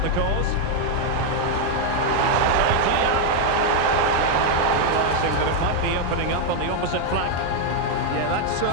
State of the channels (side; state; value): both; different; correlation 0.01